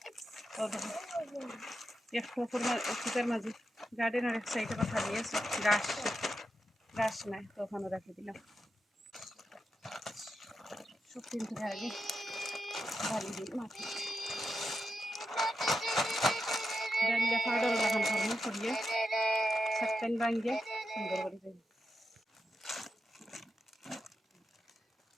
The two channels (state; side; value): normal; both; correlation 0.87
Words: এক ফুটের মাঝে গার্ডেনের এক সাইডে কথা দিয়েছে গাছ গাছ নাই, তো ওখানে রাখি দিলাম। সব কিন্তু আগে বালি দিই মাটি ডালিয়া পাউডার লাগান করবো করিয়ে সাতটান ভাঙিয়ে সুন্দর করে দিই।